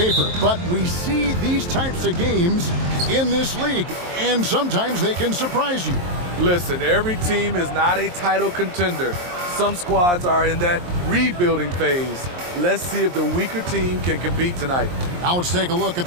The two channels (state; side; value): late; left; 23 ms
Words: but we see these types of games in this league, and sometimes they can surprise you. Listen, every team is not a title contender. Some squads are in that rebuilding phase. Let's see if the weaker team can compete tonight. Now let's take a look at